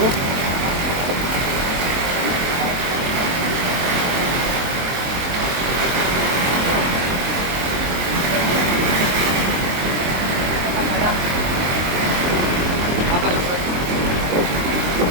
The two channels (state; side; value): late; left; 23 ms